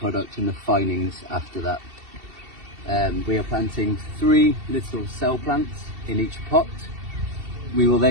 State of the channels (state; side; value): late; left; 2.7 ms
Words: and the finings after that. We are planting 3 little cell plants in each pot. We will